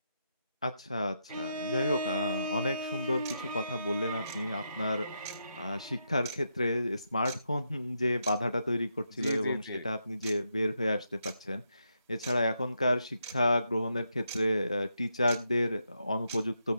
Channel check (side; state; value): both; inverted; correlation -0.82